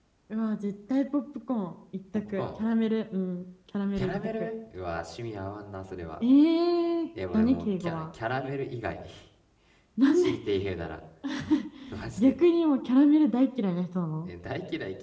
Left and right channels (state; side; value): identical; both; correlation 1.00